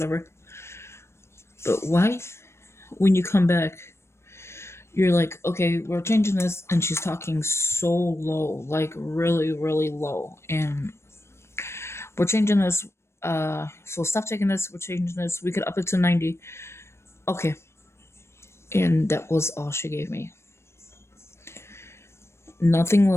But why, when you come back, you're like, okay, we're changing this, and she's talking so low, like really, really low, and we're changing this, so stop taking this, we're changing this, we could up it to 90. Okay. And that was all she gave me. Nothing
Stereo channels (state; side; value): late; right; 0.13 ms